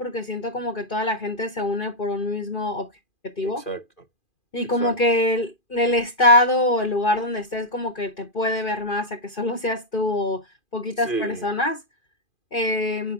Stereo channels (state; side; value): late; right; 2.4 ms